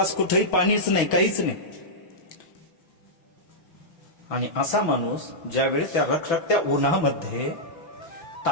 कुठेही पाणीच नाही, काहीच नाही. आणि असा माणूस ज्यावेळी त्या रखरखत्या उन्हामध्ये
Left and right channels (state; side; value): late; right; 5.9 ms